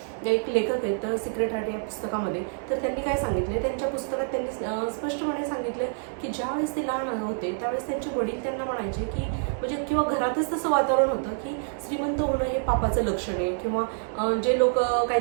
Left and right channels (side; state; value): left; silent; digital silence